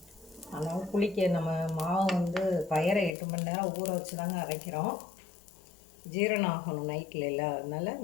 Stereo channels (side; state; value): right; drops out; at 3.2 s